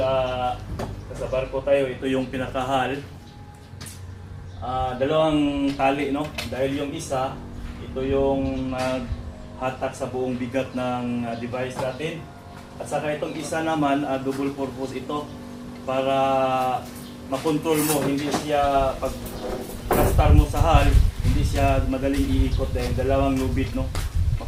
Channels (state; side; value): identical; both; correlation 1.00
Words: barko tayo, ito yung pinakahal. Dalawang tali, no? Dahil yung isa, ito yung hatak sa buong bigat ng device natin. At saka itong isa naman, double purpose ito para makontrol mo, hindi siya pag plastar mo sa hull, hindi siya madaling iikot dahil dalawang lubid, no?